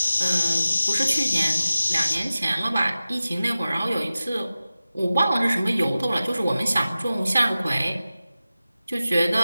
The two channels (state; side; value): inverted; both; correlation -0.95